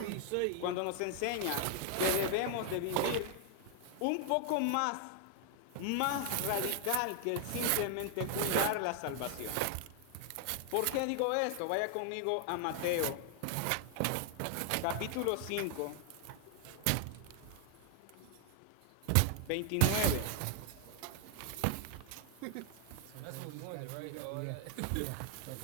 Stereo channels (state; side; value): different; both; correlation 0.00